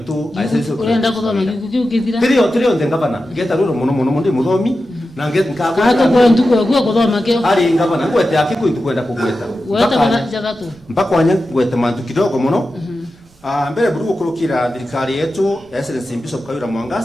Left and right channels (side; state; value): right; noise; rumble, 28 dB below the sound